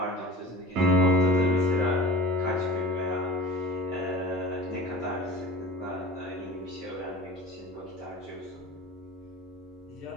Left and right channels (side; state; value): both; normal; correlation 0.39